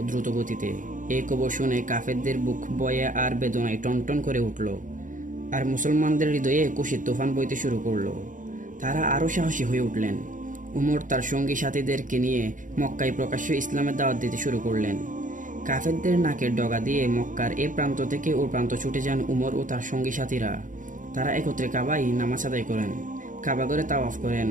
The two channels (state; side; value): late; left; 0.38 ms